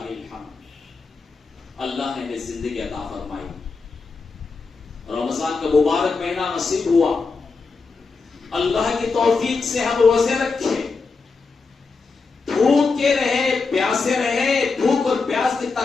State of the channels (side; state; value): right; quieter; 4.4 dB